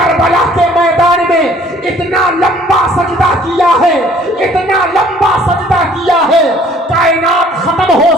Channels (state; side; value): normal; both; correlation 0.56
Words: کے میدان میں اتنا لمبا سجدہ کیا ہے، اتنا لمبا سجدہ کیا ہے، کائنات ختم ہو